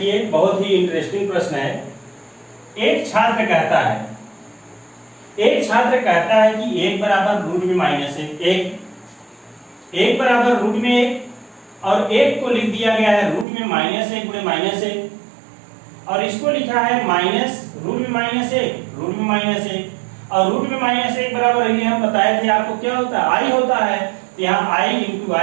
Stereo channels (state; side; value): drops out; left; at 13.5 s